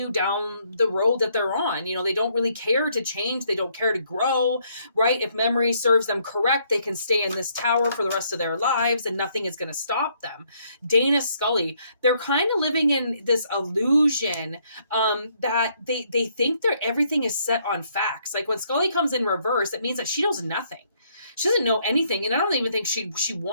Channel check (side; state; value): both; inverted; correlation -0.70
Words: down the road that they're on. You know, they don't really care to change. They don't care to grow, right? If memory serves them correct, they can stay in this tower for the rest of their lives, and nothing is going to stop them. Dana Scully, they're kind of living in this illusion that they think everything is set on facts. Like when Scully comes in reverse, it means that she knows nothing. She doesn't know anything, and I don't even think she